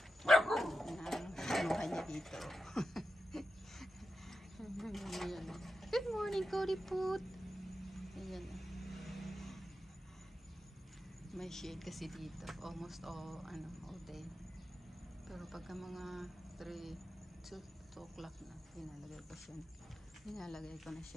Kinuha niya dito. Good morning, Cody Put. Ayan. May shade kasi dito. Almost all day. Pero pagka mga 2 o'clock na, Nilalagay ko na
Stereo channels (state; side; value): normal; both; correlation 0.90